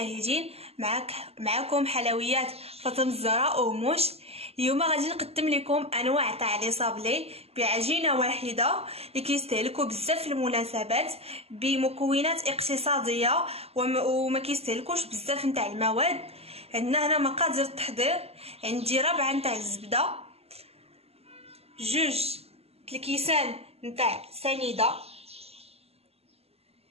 معكم حلويات فاطمه الزهراء وموش. اليوم غادي نقدم لكم انواع تاع لي صابلي بعجينه واحده اللي كيستهلكوا بزاف في المناسبات بمكونات اقتصاديه وما كيستهلكوش بزاف نتاع المواد. عندنا هنا مقادير التحضير. عندي ربعه نتاع الزبده، جوج الكيسان نتاع سنيده،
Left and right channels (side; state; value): left; late; 0.29 ms